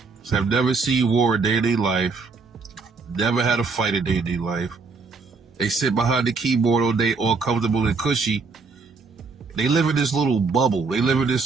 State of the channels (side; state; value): left; quieter; 4.4 dB